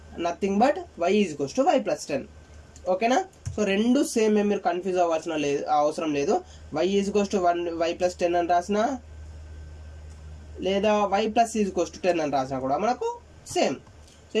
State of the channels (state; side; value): identical; both; correlation 1.00